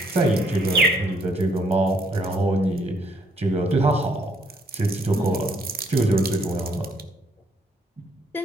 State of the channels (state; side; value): normal; both; correlation 0.68